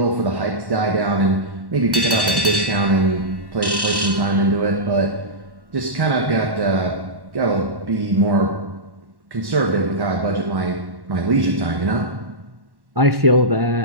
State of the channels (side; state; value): left; late; 1.1 ms